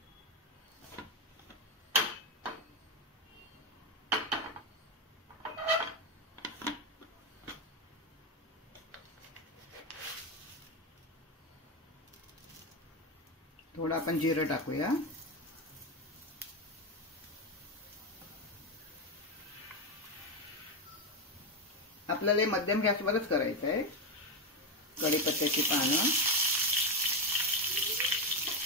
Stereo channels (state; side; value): normal; both; correlation 0.11